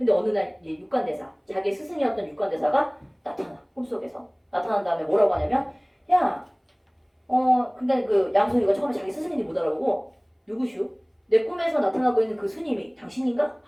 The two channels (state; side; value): identical; both; correlation 1.00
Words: 어느 날 이제 육관대사, 자기의 스승이었던 육관대사가 나타나. 꿈속에서. 나타난 다음에 뭐라고 하냐면 야, 근데 그 양소유가 처음에 자기 스승인지 못 알아보고 누구슈? 내 꿈에서 나타나고 있는 그 스님이 당신인가?